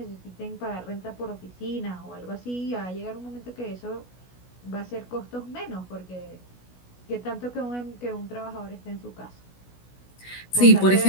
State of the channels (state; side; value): late; right; 16 ms